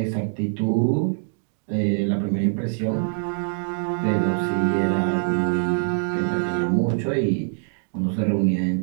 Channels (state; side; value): silent; left; digital silence